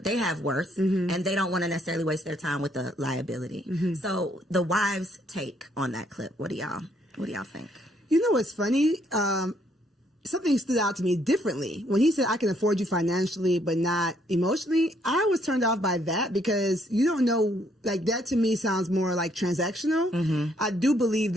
have worth, and they don't want to necessarily waste their time with the liability. So the wives' take on that clip, what do y'all think? You know what's funny? Something stood out to me differently. When he said, I can afford you financially, but not emotionally, I was turned off by that because you don't know, like that to me sounds more like transactional. I do believe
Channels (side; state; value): both; normal; correlation 0.69